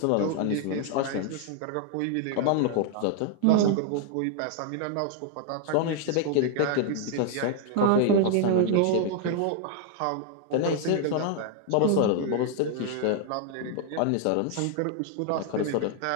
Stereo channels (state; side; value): different; both; correlation 0.00